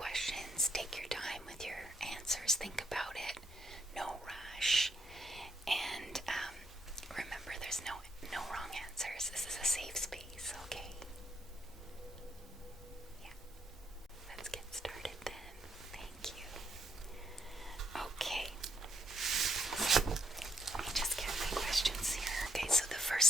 Take your time with your answers. Think about it. No rush. And remember, there's no wrong answers. This is a safe space, okay? Yeah. Let's get started then. Thank you. Okay. Let me just get my questions here. Okay, so the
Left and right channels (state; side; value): normal; both; correlation 0.74